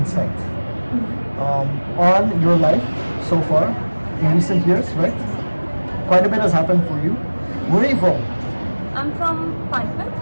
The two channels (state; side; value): inverted; both; correlation -1.00